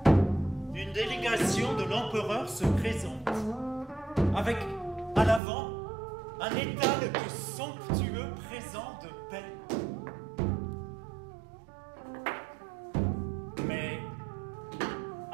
Une délégation de l'empereur se présente, avec à l'avant un étal de somptueux présents de paix. Mais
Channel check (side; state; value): left; drops out; at 5.4 s